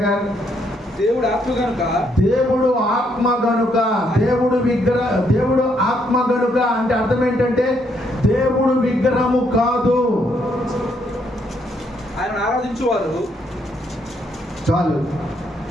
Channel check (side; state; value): both; normal; correlation 0.73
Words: దేవుడు ఆత్మ గనుక, దేవుడు ఆత్మ గనుక, దేవుడు ఆత్మ గనుక అంటే అర్థం ఏంటంటే దేవుడు విగ్రహము కాదు. ఆయన ఆరాధించేవారు చాలు.